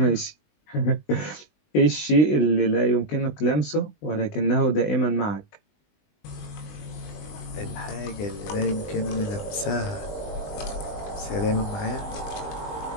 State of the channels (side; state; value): right; late; 20 ms